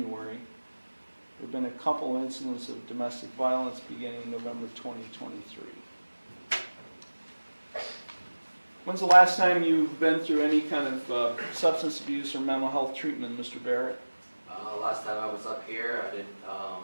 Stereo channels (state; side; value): inverted; both; correlation -1.00